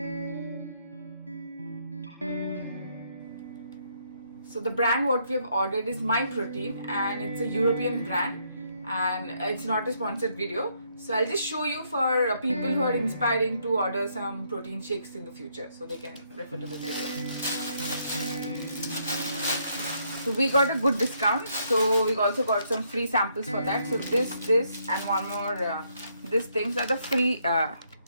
So the brand what we have ordered is My Protein, and it's a European brand, and it's not a sponsored video. So I'll just show you for people who are inspiring to order some protein shakes in the future, so they can refer to this video. So we got a good discount, so we also got some free samples for that. So this and one more these things are the free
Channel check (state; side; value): inverted; both; correlation -0.73